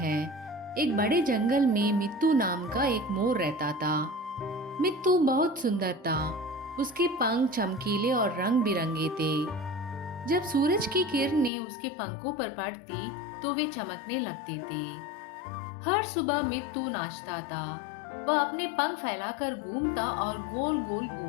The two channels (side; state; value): right; drops out; at 11.5 s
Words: एक बड़े जंगल में मित्तू नाम का एक मोर रहता था। मित्तू बहुत सुंदर था। उसके पंख चमकीले और रंग बिरंगे थे। जब सूरज की किरणें उसके पंखों पर पड़ती तो वे चमकने लगते थे। हर सुबह मित्तू नाचता था। वह अपने पंख फैलाकर घूमता और गोल गोल